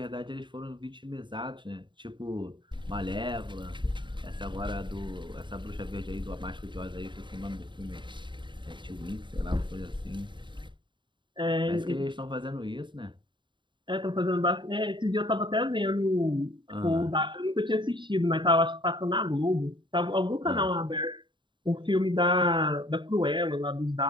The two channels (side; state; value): left; late; 0.23 ms